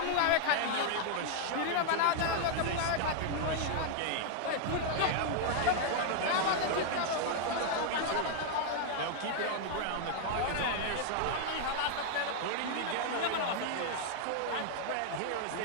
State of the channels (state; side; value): different; both; correlation 0.00